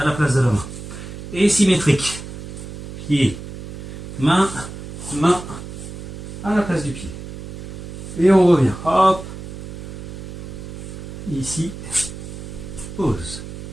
la place de la main. Et symétrique. Pied, main, main à la place du pied. Et on revient. Hop. Ici. Pause.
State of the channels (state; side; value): noise; right; hum, 10 dB below the sound